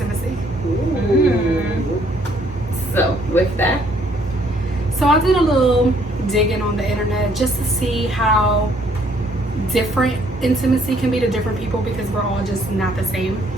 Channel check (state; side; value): normal; both; correlation 0.65